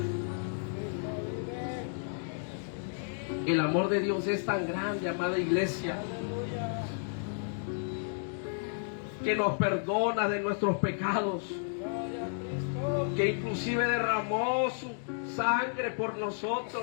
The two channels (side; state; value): right; silent; digital silence